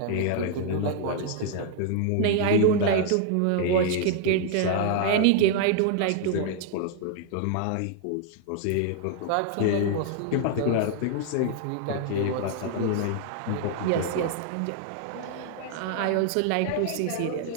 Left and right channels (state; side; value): different; both; correlation 0.00